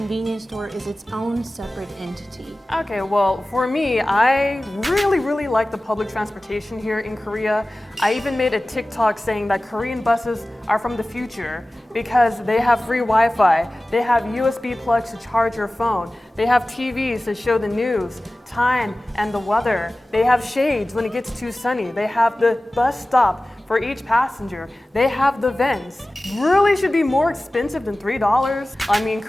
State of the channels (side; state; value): both; normal; correlation 0.97